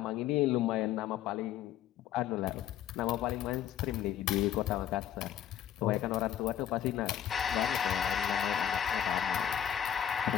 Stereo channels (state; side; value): quieter; right; 10.4 dB